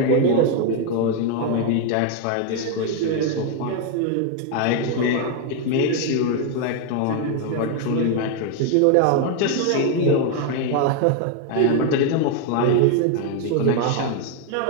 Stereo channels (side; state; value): both; different; correlation 0.01